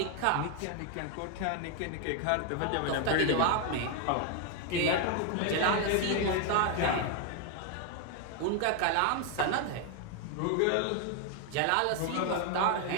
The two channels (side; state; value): both; different; correlation 0.01